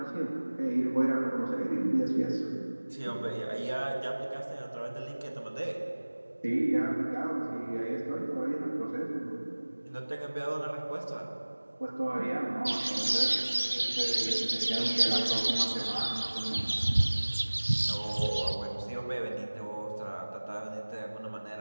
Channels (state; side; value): inverted; both; correlation -1.00